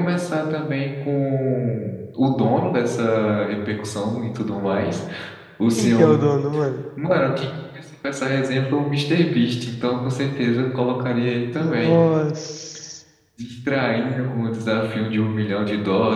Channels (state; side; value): identical; both; correlation 1.00